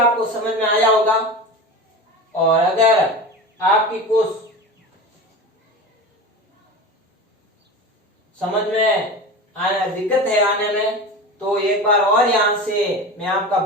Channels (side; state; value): both; normal; correlation 0.29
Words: समझ में आया होगा। और अगर आपकी कुछ समझ में दिक्कत है आने में, तो एक बार और यहां से मैं आपका